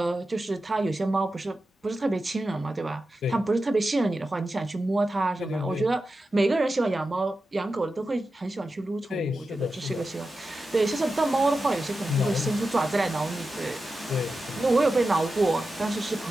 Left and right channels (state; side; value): normal; both; correlation 0.92